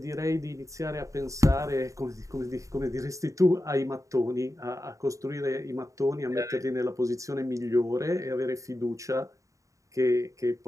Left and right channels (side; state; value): left; late; 0.16 ms